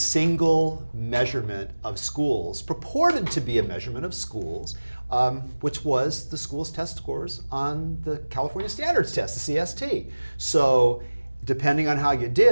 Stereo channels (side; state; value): both; inverted; correlation -1.00